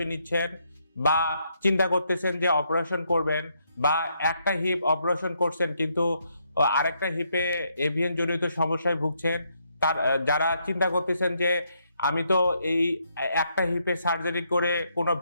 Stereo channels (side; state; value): both; inverted; correlation -0.75